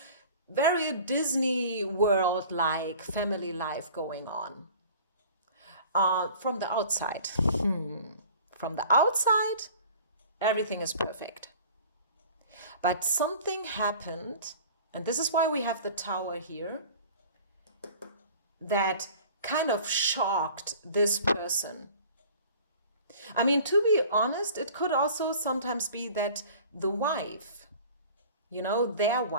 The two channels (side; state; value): both; inverted; correlation -0.45